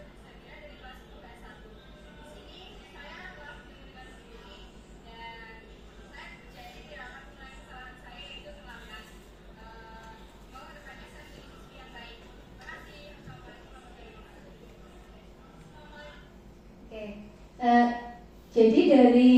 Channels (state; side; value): identical; both; correlation 1.00